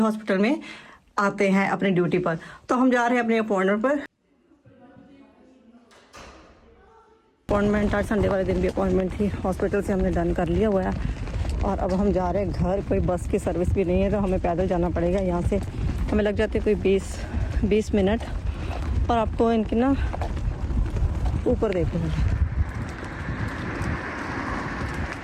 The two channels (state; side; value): identical; both; correlation 1.00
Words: में आते हैं अपनी ड्यूटी पर। तो हम जा रहे हैं अपनी अपॉइंटमेंट पर। अपॉइंटमेंट आज संडे वाले दिन भी अपॉइंटमेंट थी, हॉस्पिटल से हमने डन कर लिया हुआ है। और अब हम जा रहे हैं घर। कोई बस की सर्विस भी नहीं है तो हमें पैदल जाना पड़ेगा। यहाँ से हमें लग जाते कोई 20 मिनट। और आपको इनकी ना ऊपर देखो,